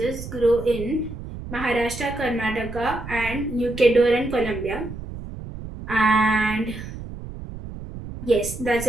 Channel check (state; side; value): noise; right; rumble, 11 dB below the sound